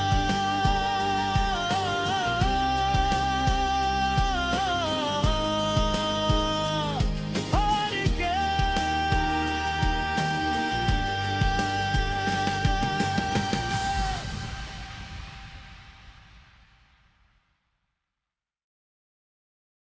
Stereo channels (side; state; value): both; identical; correlation 1.00